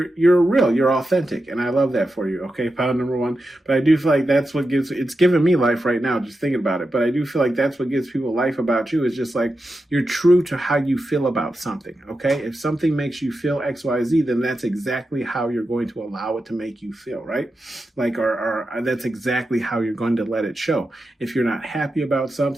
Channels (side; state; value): both; normal; correlation 0.90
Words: real, you're authentic. And I love that for you. Okay. Pound number one. But I do feel like that's what it's giving me life right now, just thinking about it. But I do feel like that's what gives people life about you, is just like, you're true to how you feel about something. Okay. If something makes you feel XYZ, then that's exactly how you're going to allow it to make you feel, right? Like, or that's exactly how you're going to let it show. If you're not happy about